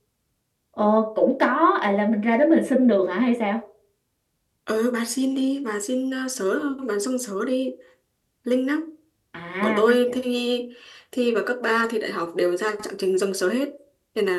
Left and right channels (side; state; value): both; identical; correlation 1.00